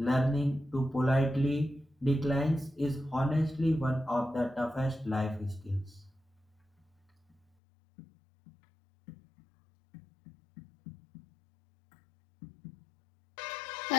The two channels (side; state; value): right; drops out; at 7.5 s